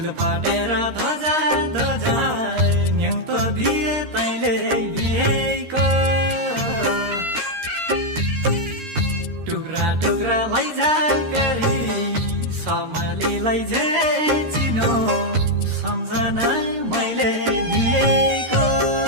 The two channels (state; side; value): late; left; 13 ms